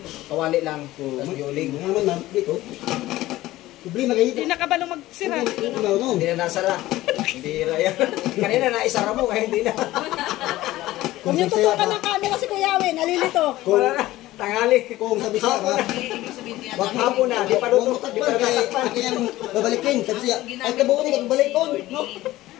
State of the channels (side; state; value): right; quieter; 16.5 dB